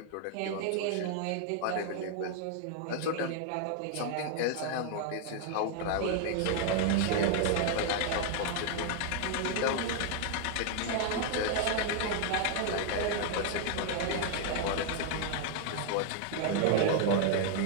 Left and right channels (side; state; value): both; different; correlation 0.00